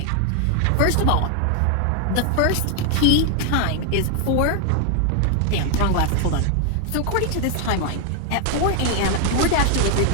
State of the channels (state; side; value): different; both; correlation 0.00